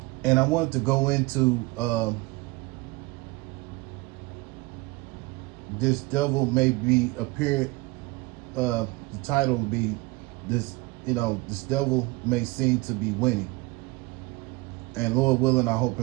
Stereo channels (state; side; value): quieter; left; 23.3 dB